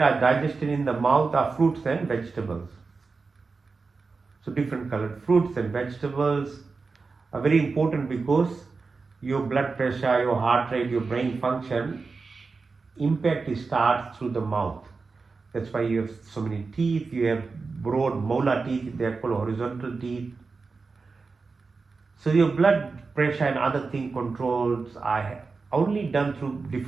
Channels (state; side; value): quieter; left; 4.4 dB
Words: are digested in the mouth are fruits and vegetables. So different colored fruits and vegetables are very important, because your blood pressure, your heart rate, your brain function, impact starts through the mouth. That's why you have so many teeth. You have broad molar teeth, they are called horizontal teeth. So your blood pressure and other thing controls are only done through